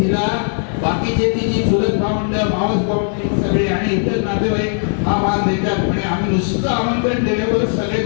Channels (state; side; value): silent; right; 59 dB below the other